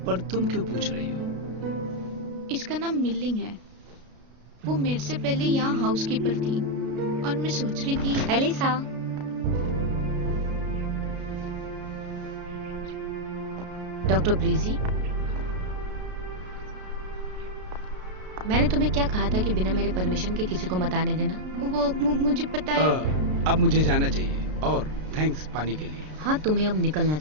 पर तुम क्यों पूछ रही हो? इसका नाम मिल्लिंग है। वो मेरे से पहले यहाँ हाउसकीपर थी और मैं सोच रही थी। एलिसा, डॉक्टर ब्रीजी, मैंने तुम्हें क्या कहा था कि बिना मेरे परमिशन के किसी को मत आने देना? वो मुझे पता है। अब मुझे जाना चाहिए, और थैंक्स पानी के लिए। हाँ, तुम्हें अब निकलना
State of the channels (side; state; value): left; late; 33 ms